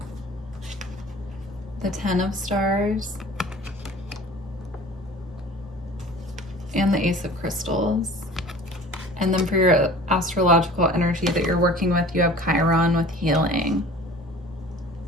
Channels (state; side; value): normal; both; correlation 0.44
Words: the Ten of Stars, and the Ace of Crystals. And then for your astrological energy that you're working with, you have Chiron with healing.